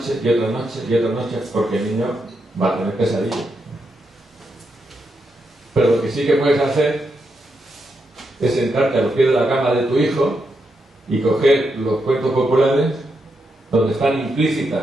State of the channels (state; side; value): normal; both; correlation 0.83